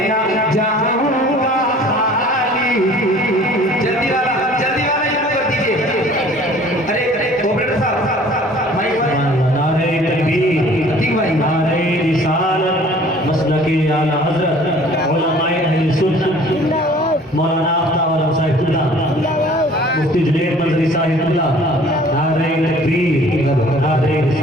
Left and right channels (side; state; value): both; normal; correlation 0.51